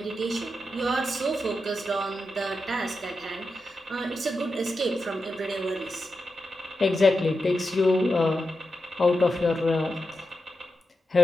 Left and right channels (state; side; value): normal; both; correlation 0.89